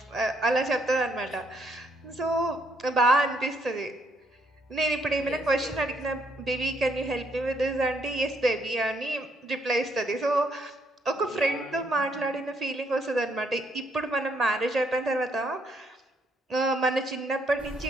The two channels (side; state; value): both; normal; correlation 0.72